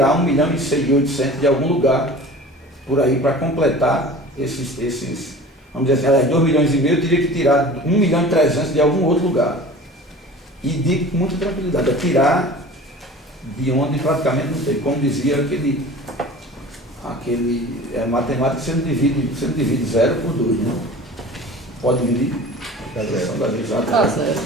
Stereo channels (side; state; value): both; normal; correlation 0.40